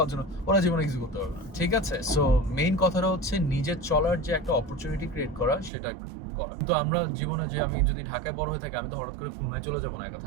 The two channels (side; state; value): left; drops out; at 5.7 s